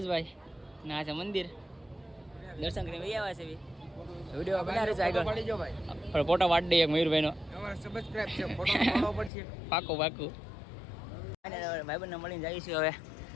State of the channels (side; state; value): right; drops out; at 9.3 s